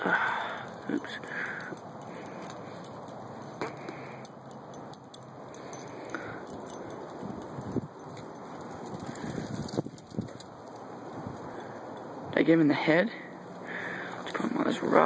Oops. Did I get him in the head? Let's put him on this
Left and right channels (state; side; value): identical; both; correlation 1.00